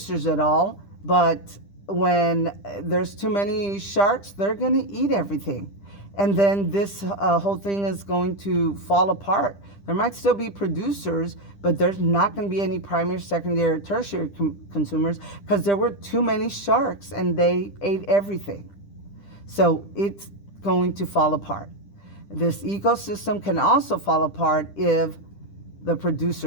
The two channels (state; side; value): late; right; 10 ms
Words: at all, but when there's too many sharks, they're going to eat everything. And then this whole thing is going to fall apart. There might still be producers, but there's not going to be any primary, secondary, or tertiary consumers because there were too many sharks and they ate everything. So it's going to fall apart. This ecosystem can also fall apart if the